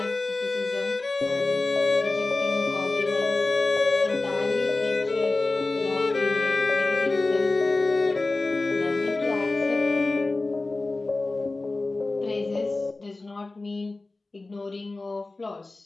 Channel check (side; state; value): right; quieter; 3.2 dB